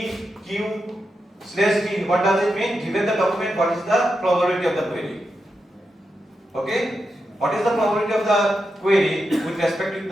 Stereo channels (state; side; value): normal; both; correlation 0.87